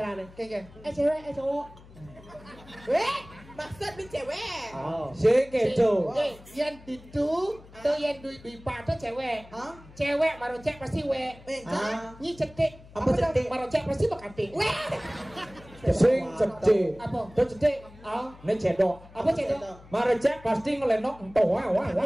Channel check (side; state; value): left; noise; hum, 21 dB below the sound